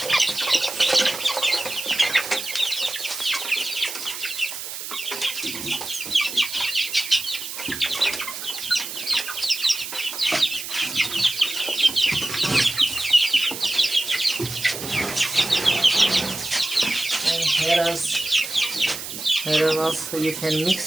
Here also you can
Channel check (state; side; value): noise; right; hiss, 8 dB below the sound